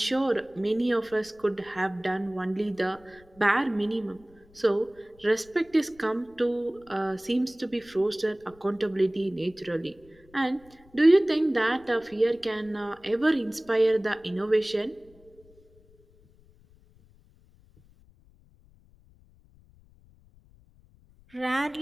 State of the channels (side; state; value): left; noise; rumble, 28 dB below the sound